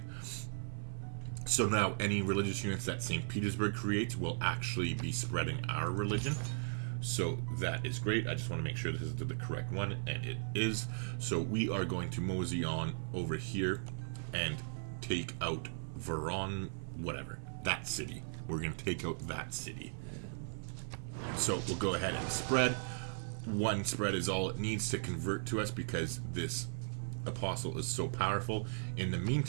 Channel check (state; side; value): silent; left; 53 dB below the other